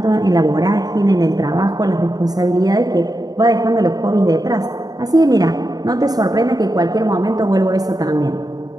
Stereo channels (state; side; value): late; left; 0.18 ms